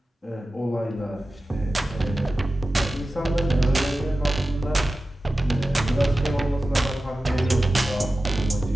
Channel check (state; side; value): normal; both; correlation 0.95